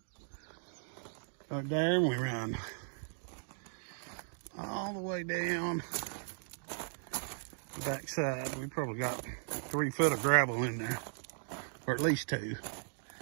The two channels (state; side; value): silent; left; digital silence